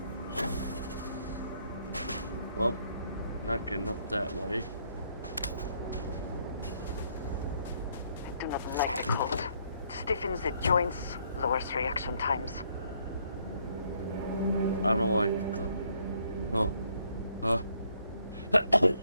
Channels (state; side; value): inverted; both; correlation -0.69